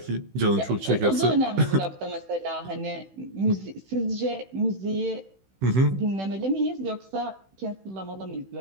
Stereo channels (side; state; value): left; late; 16 ms